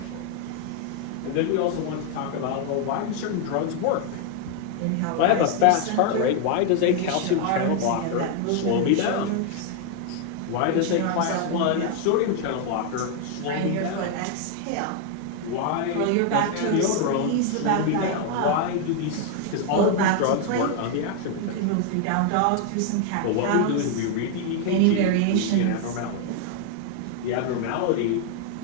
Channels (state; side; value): different; both; correlation 0.00